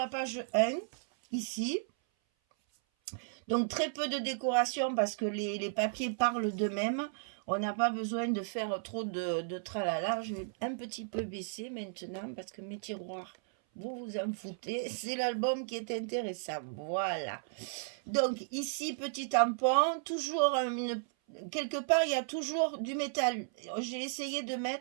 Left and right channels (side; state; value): left; silent; 55 dB below the other